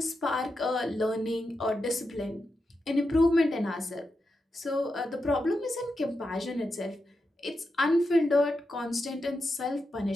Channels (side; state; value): both; normal; correlation 0.87